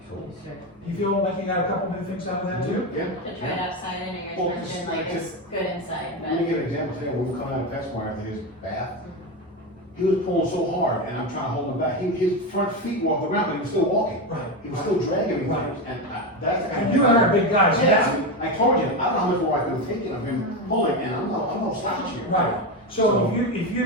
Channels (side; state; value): both; normal; correlation 0.15